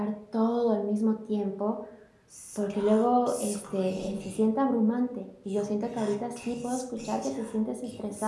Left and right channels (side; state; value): both; identical; correlation 1.00